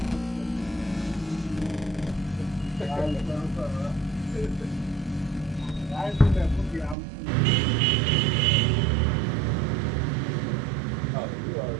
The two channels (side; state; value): left; drops out; at 7.0 s